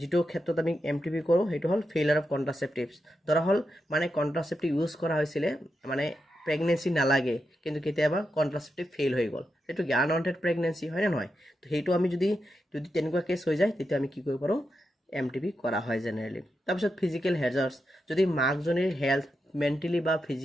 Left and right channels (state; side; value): normal; both; correlation 0.87